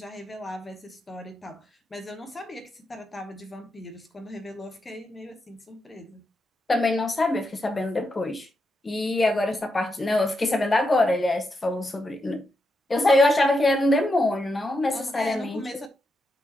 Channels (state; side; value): normal; both; correlation 0.85